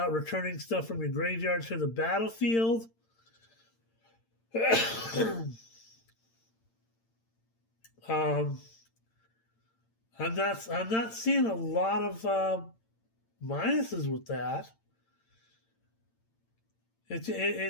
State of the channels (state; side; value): late; right; 8.8 ms